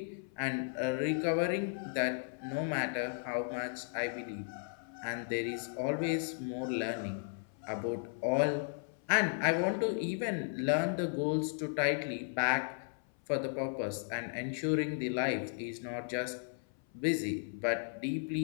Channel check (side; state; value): right; silent; 54 dB below the other